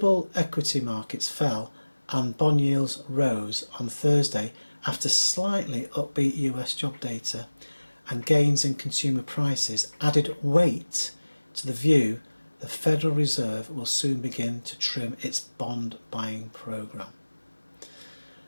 equity markets fell and bond yields rose on Thursday after slightly upbeat US job data and gains in consumer prices added weight to the view the Federal Reserve will soon begin to trim its bond buying programme.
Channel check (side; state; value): both; inverted; correlation -1.00